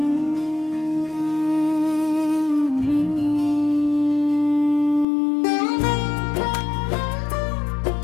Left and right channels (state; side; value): drops out; right; at 5.1 s